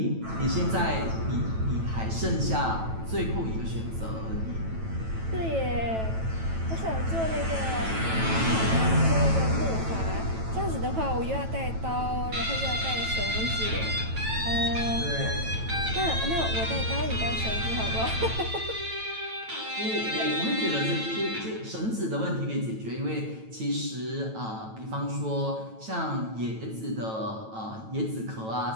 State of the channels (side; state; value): left; late; 9.1 ms